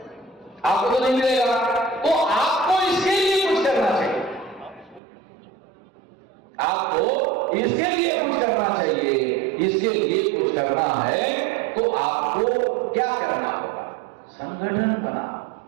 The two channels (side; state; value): left; drops out; at 5.0 s